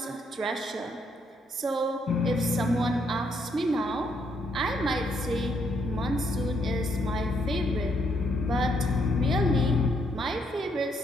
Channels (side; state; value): both; normal; correlation 0.73